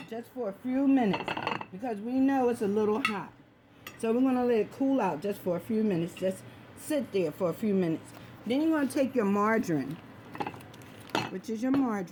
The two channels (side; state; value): both; identical; correlation 1.00